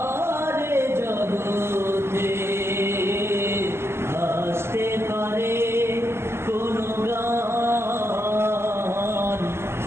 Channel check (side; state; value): left; late; 0.12 ms